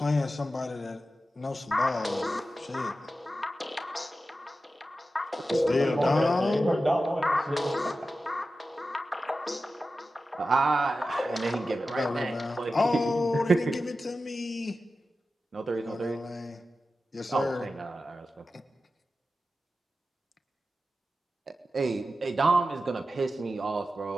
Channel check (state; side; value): normal; both; correlation 0.93